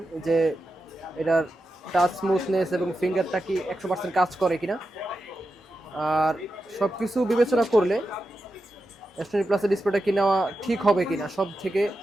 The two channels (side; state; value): both; normal; correlation 0.89